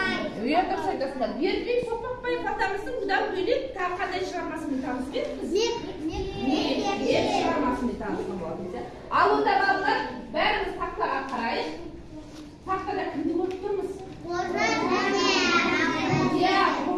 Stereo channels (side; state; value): both; identical; correlation 1.00